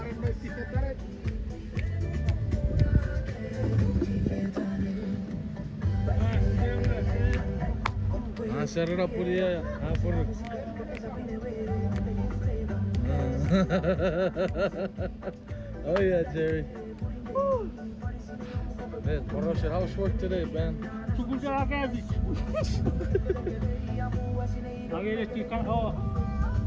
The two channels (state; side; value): identical; both; correlation 1.00